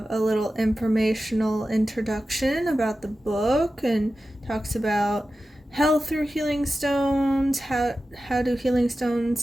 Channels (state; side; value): normal; both; correlation 0.93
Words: a little informational introduction about the book and talks about health through healing stones, how do healing